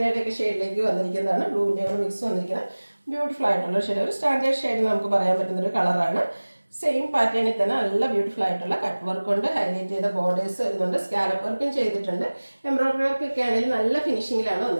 ഷെയ്ഡിലേക്ക് വന്നിരിക്കുന്നതാണ്. ബ്ലൂവിൻ്റെ കൂടെ മിക്സ് വന്നിരിക്കുന്നത് ബ്യൂട്ടിഫുൾ ആയിട്ടുള്ള ഷെയ്ഡ്. ഒരു സ്റ്റാൻഡേർഡ് ഷെയ്ഡ് നമുക്ക് പറയാൻ പറ്റുന്നൊരു കളറാണ്. സെയിം പാറ്റേണിൽ തന്നെ നല്ല ബ്യൂട്ടിഫുൾ ആയിട്ടുള്ള കട്ട് വർക്ക് കൊണ്ട് ഹൈലൈറ്റ് ചെയ്ത ബോർഡേഴ്സ് വരുന്നുണ്ട്. സ്കാലപ്പ് വർക്കും ചെയ്തിട്ടുണ്ട്. എംബ്രോയിഡറി വർക്കൊക്കെ ആണെങ്കിൽ നല്ല ഫിനിഷിങ്ങിലാണ്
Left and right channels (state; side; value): inverted; both; correlation -1.00